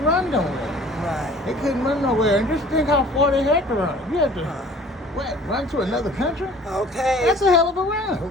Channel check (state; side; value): normal; both; correlation 0.49